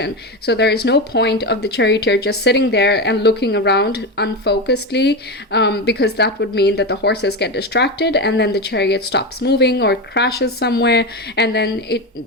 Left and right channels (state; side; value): normal; both; correlation 0.17